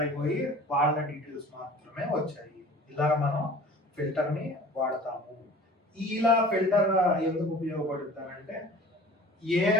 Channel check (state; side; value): normal; both; correlation 0.44